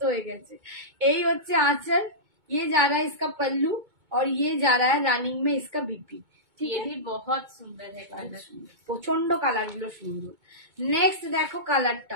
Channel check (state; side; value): late; left; 2.2 ms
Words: হয়ে গেছে। এই হচ্ছে आंचल, ये जा रहा है इसका पल्लू और ये जा रहा है रनिंग में इसका बीपी। ঠিক ये আছে, भी बहुत सुंदर है कलर। প্রচন্ড কালার গুলো সুন্দর। নেক্সট দেখো